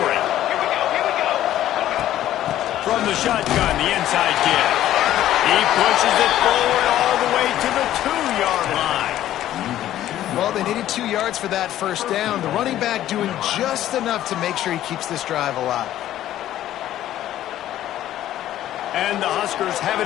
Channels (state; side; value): quieter; right; 12.8 dB